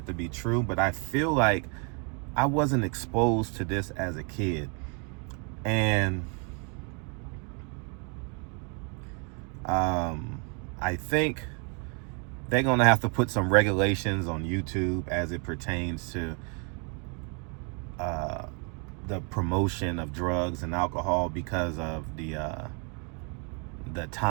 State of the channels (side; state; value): left; quieter; 36.0 dB